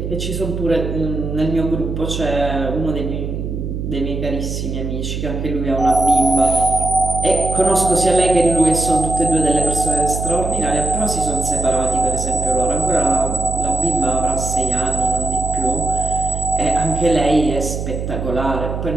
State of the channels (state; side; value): noise; right; hum, 4 dB below the sound